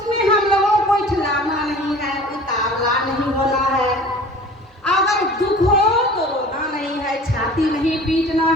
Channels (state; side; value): normal; both; correlation 0.44